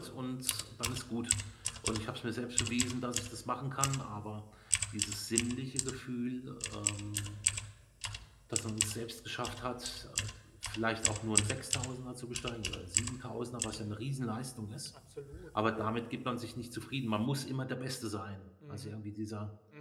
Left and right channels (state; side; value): identical; both; correlation 1.00